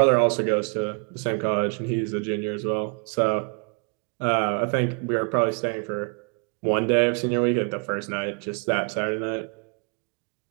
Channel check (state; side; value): quieter; left; 38.2 dB